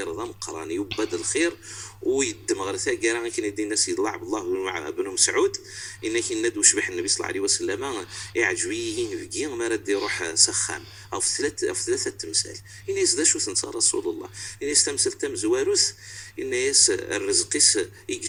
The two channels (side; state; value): both; identical; correlation 1.00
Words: ذا مقراني يبد الخير ويدم غرسا كان كاين يدي الناس يلعب الله مع ابن مسعود انك ندو شبح النبي صلى الله عليه وسلم يعجبين بكيا ما رد يروح سخان او في ثلاثه تمثال الناس ذا شو تنسى رسول الله الناس تمثل تم زواروس الناس الرزقيس